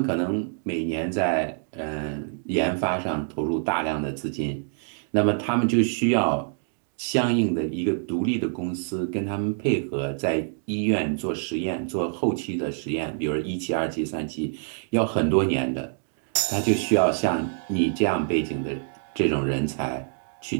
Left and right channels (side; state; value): left; silent; digital silence